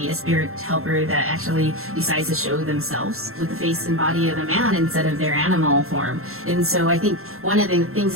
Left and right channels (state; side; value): late; left; 0.62 ms